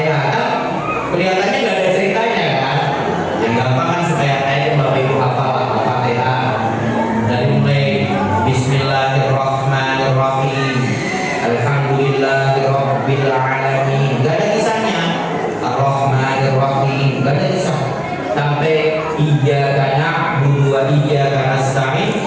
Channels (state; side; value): identical; both; correlation 1.00